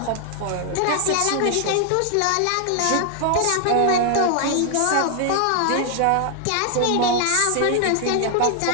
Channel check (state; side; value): different; both; correlation 0.00